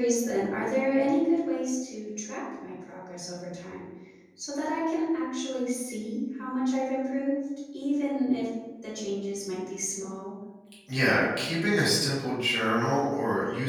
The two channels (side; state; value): both; identical; correlation 1.00